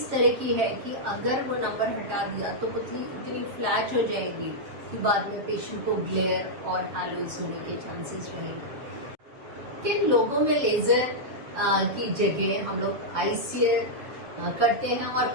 तरह की है कि अगर वो नंबर हटा दिया तो पुतली इतनी फ्लैट हो जाएगी कि बाद में पेशेंट को ग्लेयर और हैलोज होने के चांसेस रहेंगे। किन लोगों में लेजर की जगह हम लोग आईसीएल करते हैं और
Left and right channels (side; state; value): left; late; 7.2 ms